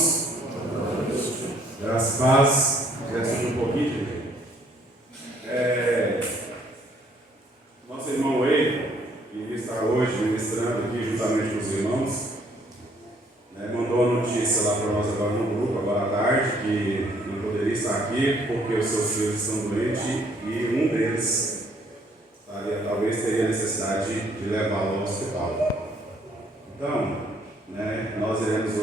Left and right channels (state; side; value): normal; both; correlation 0.64